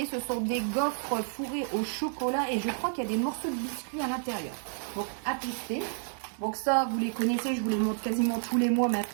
Ce sont des gaufres fourrées au chocolat et je crois qu'il y a des morceaux de biscuits à l'intérieur. Donc à tester. Donc ça, vous les connaissez, je vous les montre quasiment tous les mois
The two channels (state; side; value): silent; left; digital silence